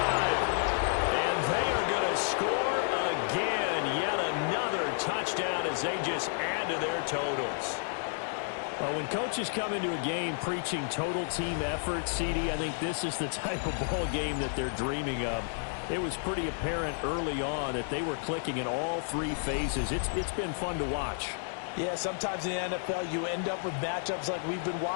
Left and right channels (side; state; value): right; silent; 57 dB below the other